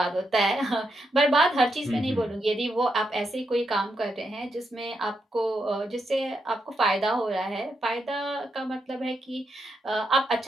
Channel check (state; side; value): normal; both; correlation 0.82